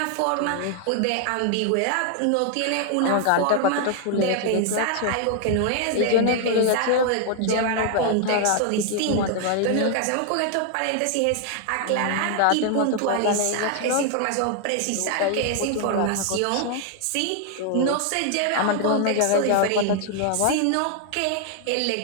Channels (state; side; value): different; both; correlation 0.00